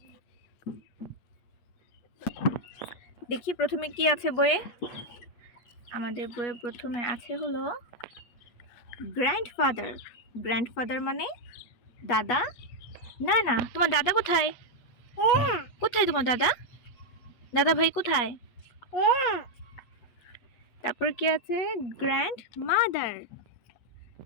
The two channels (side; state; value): right; late; 8.4 ms